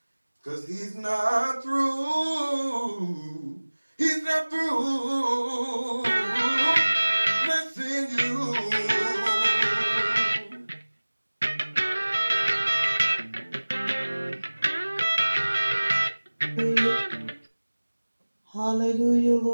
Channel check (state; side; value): inverted; both; correlation -1.00